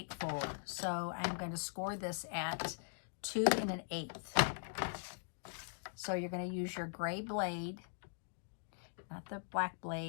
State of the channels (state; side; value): silent; right; digital silence